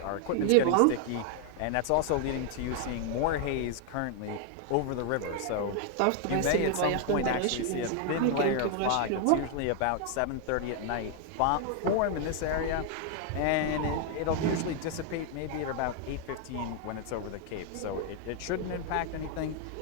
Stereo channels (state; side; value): different; both; correlation 0.00